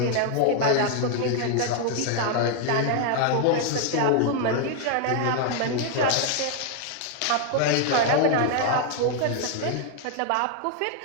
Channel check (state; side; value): different; both; correlation 0.00